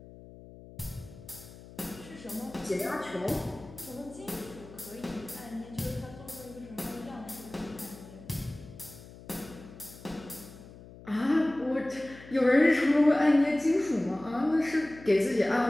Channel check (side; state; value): left; noise; hum, 18 dB below the sound